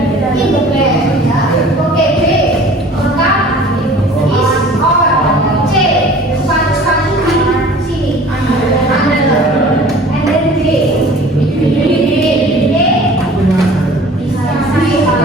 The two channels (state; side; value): normal; both; correlation 0.46